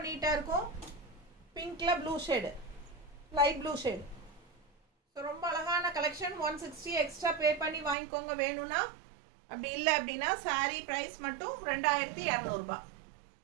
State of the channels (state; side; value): drops out; left; at 8.0 s